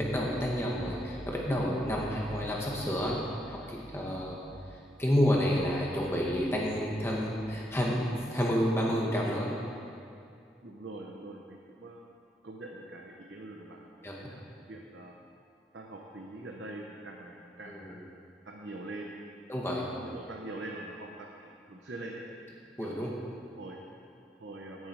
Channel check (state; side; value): normal; both; correlation 0.77